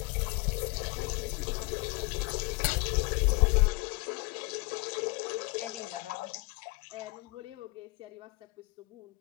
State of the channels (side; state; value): right; quieter; 25.5 dB